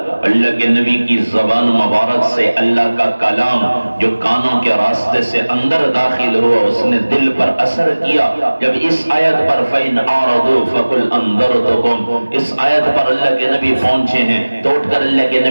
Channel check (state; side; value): inverted; both; correlation -1.00